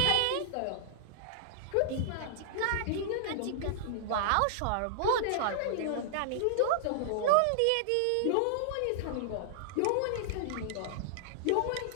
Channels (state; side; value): different; both; correlation -0.01